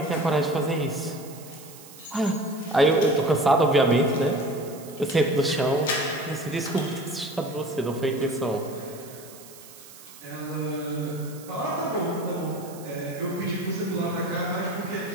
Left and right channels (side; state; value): right; noise; hiss, 19 dB below the sound